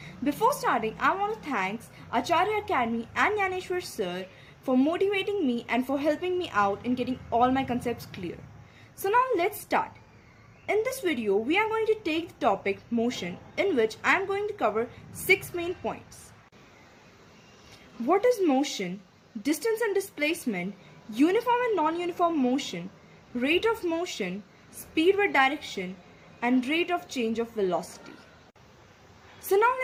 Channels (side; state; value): both; identical; correlation 1.00